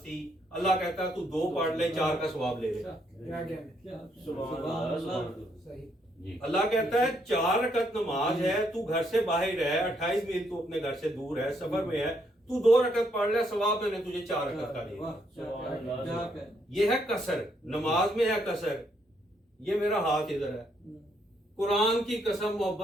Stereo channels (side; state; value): both; normal; correlation 0.73